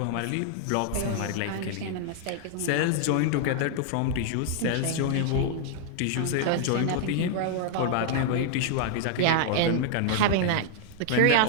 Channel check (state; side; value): different; both; correlation -0.01